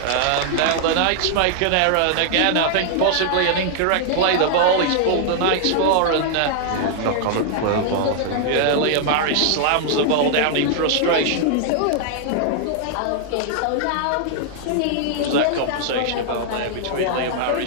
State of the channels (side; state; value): both; different; correlation -0.01